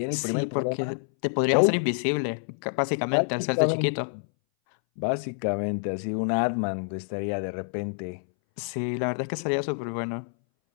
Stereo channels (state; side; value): silent; right; 60 dB below the other